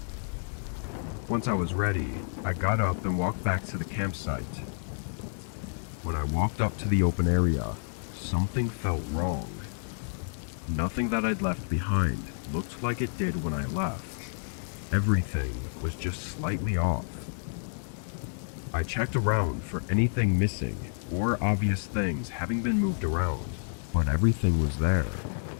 Once I was ready, I got up and walked back to the campsite. When I walked up to the open area, something felt wrong. Nothing that I'd left behind looked like it did when I left. Everything was just slightly off. I checked around for anything missing or obvious things having been moved around, but everything was there.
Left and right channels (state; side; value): silent; right; digital silence